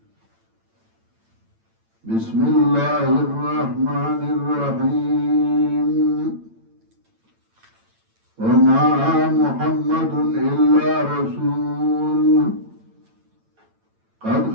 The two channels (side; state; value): left; late; 8.9 ms